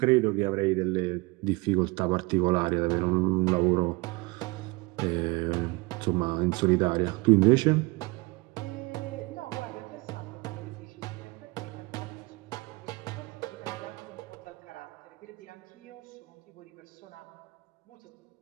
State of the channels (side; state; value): left; quieter; 25.0 dB